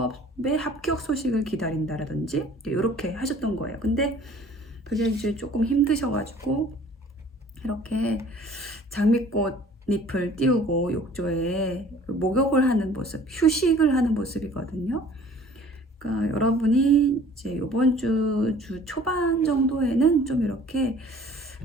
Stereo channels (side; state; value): both; normal; correlation 0.51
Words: 합격 소식을 기다린다라든지 이렇게 하셨던 거예요. 근데 그게 이제 조금 힘드셔가지고 이렇게 장미꽃 잎을 띄우고 욕조에 목욕을 하는 모습, 휴식을 하는 모습이거든요. 그러니까 여러분이 이제 이번 주 초반 정도에는 좀 이렇게